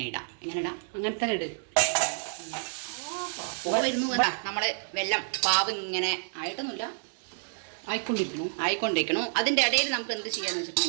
ഇടാം. ഇങ്ങനെ ഇടാം. അങ്ങനെ തന്നെ ഇട്. വരുന്നു നമ്മള് വെള്ളം പാവ് ഇങ്ങനെ ആയിട്ടൊന്നുമില്ല, ആയിക്കൊണ്ടിരിക്കണു. അതിന്റെ ഇടയിൽ നമുക്ക് എന്ത് ചെയ്യാന്ന്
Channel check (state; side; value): silent; left; digital silence